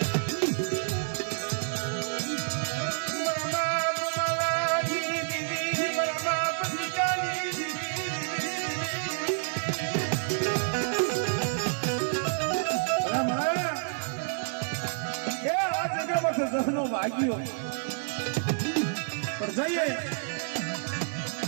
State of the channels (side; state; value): left; silent; digital silence